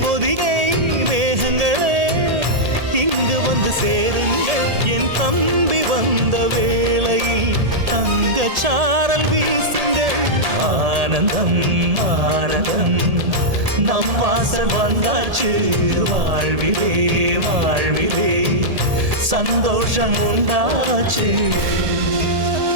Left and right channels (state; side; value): late; left; 1.8 ms